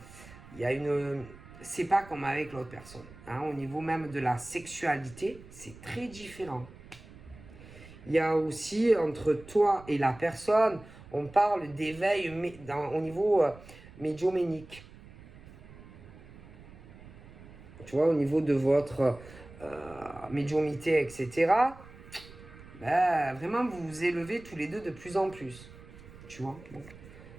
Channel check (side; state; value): right; noise; rumble, 19 dB below the sound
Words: Il y a une... C'est pas comme avec l'autre personne. Hein, au niveau même de la sexualité, c'est très différent. Il y a aussi entre toi et la personne, on parle d'éveil au niveau médiumnique. Tu vois, au niveau de votre médiumnité, etc. Ben, vraiment, vous vous élevez tous les deux de plus en plus. Tu vois, bon.